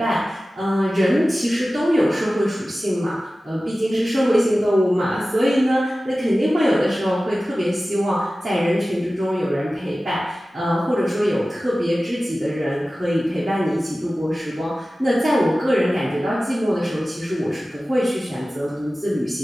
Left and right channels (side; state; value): both; normal; correlation 0.96